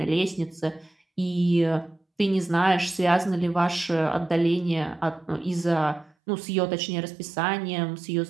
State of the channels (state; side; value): drops out; left; at 6.1 s